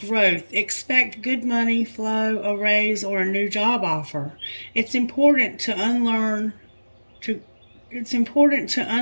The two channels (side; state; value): both; inverted; correlation -1.00